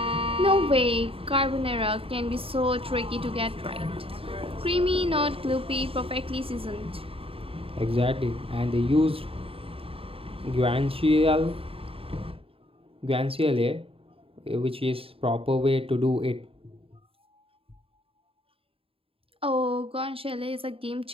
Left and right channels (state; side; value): late; left; 0.27 ms